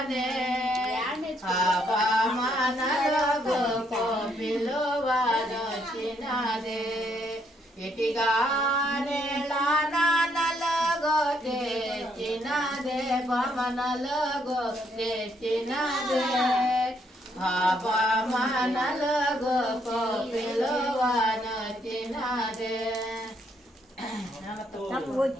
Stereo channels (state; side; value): normal; both; correlation 0.72